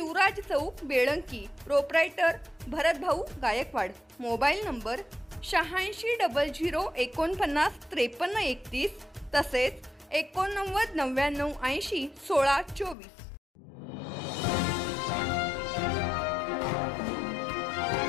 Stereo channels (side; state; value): right; drops out; at 13.0 s